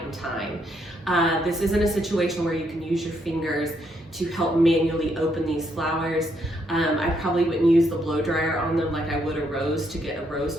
and time. This isn't a situation where you can use your fingers to help manually open these flowers. I probably wouldn't use the blow dryer on them like I would a rose to get a rose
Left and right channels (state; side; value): normal; both; correlation 0.74